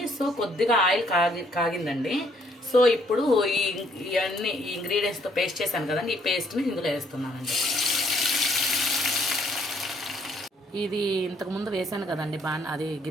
సో కొద్దిగా ఆయిల్ కాగిందండి. సో ఇప్పుడు ఇవన్నీ ఈ ఇంగ్రీడియంట్స్తో పేస్ట్ చేశాను కదండి, ఈ పేస్ట్ని ఇందులో వేస్తున్నానండి. ఇది ఇంతకుముందు వేసాను కదండి, అది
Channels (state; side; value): normal; both; correlation 0.66